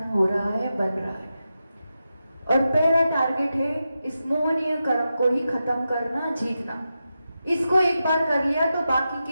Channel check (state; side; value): inverted; both; correlation -0.90